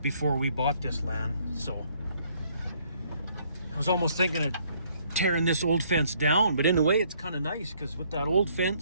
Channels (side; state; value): both; inverted; correlation -0.66